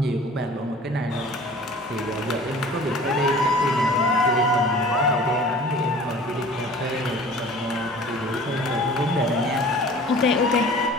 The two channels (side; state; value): both; normal; correlation 0.45